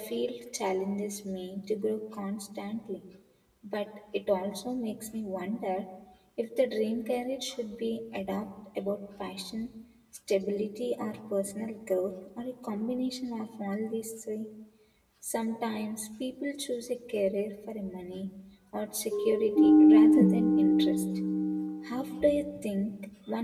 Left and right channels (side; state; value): both; identical; correlation 1.00